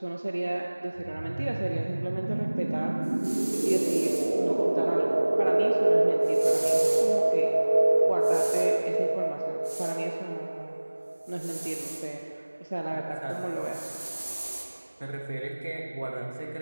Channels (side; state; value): both; inverted; correlation -1.00